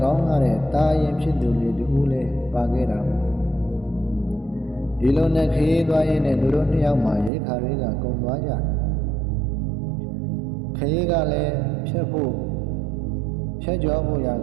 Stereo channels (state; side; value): drops out; left; at 7.3 s